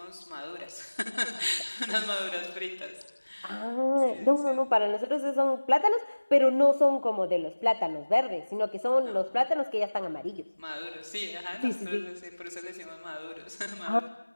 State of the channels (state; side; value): inverted; both; correlation -1.00